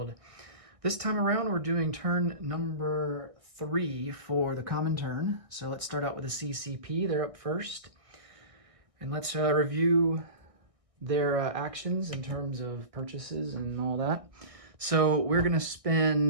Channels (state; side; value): late; left; 1.6 ms